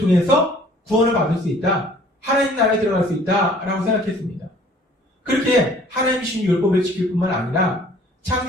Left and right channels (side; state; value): both; normal; correlation 0.54